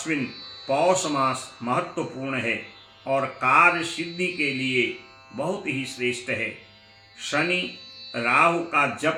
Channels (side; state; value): both; identical; correlation 1.00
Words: पौष मास महत्वपूर्ण है और कार्य सिद्धि के लिए बहुत ही श्रेष्ठ है। शनि राहु का